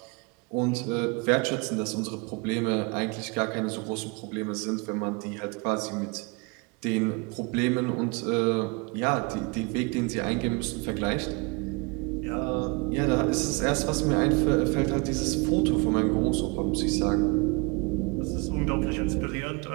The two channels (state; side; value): quieter; left; 29.5 dB